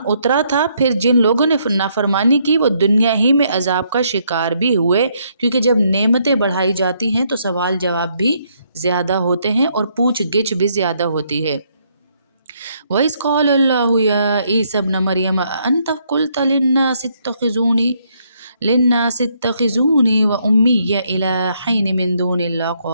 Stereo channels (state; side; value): inverted; both; correlation -0.72